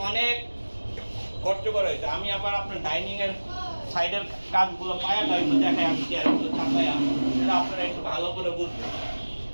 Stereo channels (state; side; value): inverted; both; correlation -1.00